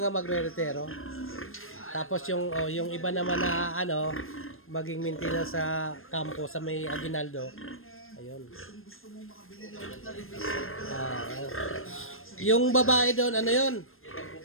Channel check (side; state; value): right; late; 0.60 ms